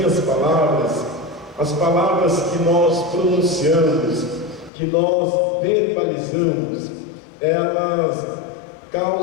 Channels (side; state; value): right; drops out; at 4.7 s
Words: palavras, as palavras que nós pronunciamos, que nós verbalizamos, elas